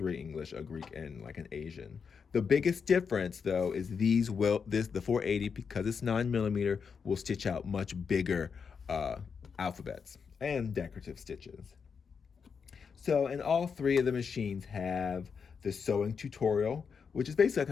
English, a Greek, and like an Asian. The biggest difference though is the 480, because it's 9mm, will stitch out much bigger alphabets and decorative stitches. So, and all 3 of the machines have the sewing tutorial, which is basically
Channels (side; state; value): right; quieter; 6.1 dB